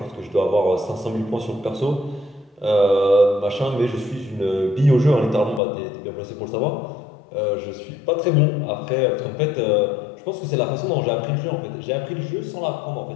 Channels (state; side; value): drops out; right; at 5.6 s